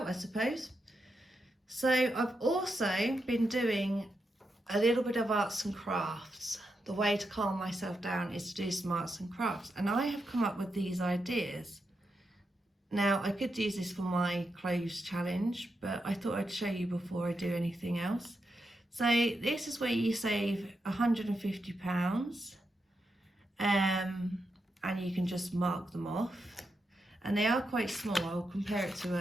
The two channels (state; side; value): normal; both; correlation 0.85